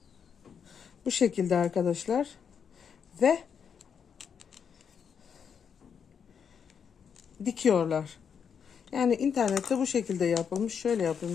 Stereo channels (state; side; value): quieter; right; 7.1 dB